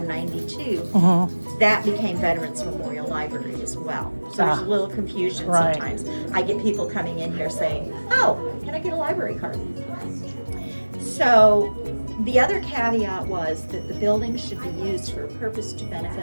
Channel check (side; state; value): both; inverted; correlation -1.00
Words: that became Veterans Memorial Library as well. So there's a little confusion sometimes. I get people coming in here saying, oh, can I get a library card? So the other caveat was that the building should be used for a purpose to